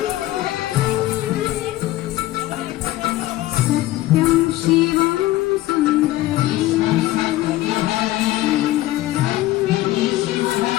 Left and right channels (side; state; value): right; quieter; 16.3 dB